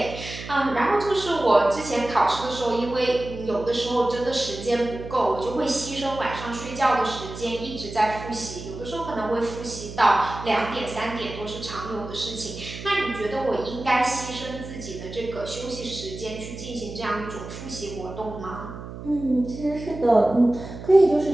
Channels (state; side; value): noise; right; hum, 11 dB below the sound